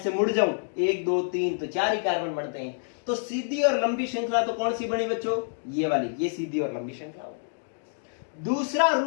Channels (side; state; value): right; silent; digital silence